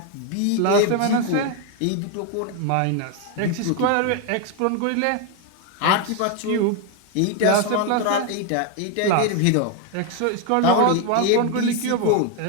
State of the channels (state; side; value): different; both; correlation 0.01